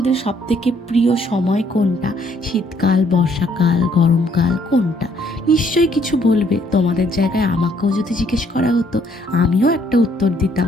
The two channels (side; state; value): both; normal; correlation 0.67